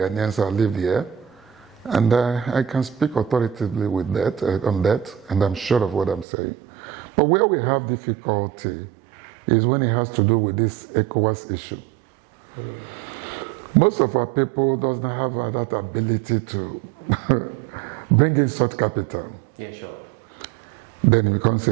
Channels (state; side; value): drops out; left; at 6.2 s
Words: I lived here, and I can speak authoritatively with that on that, and I'm sure of what I'm saying. But where we have difficulty is when it has to do with this ECOWAS issue. Most of our people doesn't have that ability to bring in such capital. Yeah, sure. Then it becomes